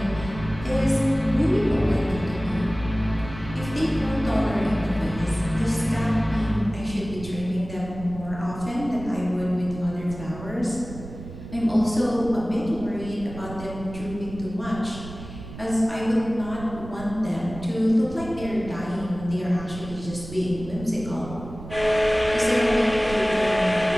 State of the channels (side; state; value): right; noise; rumble, 13 dB below the sound